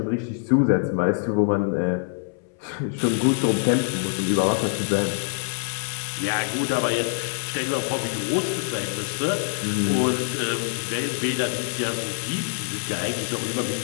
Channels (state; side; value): silent; right; 61 dB below the other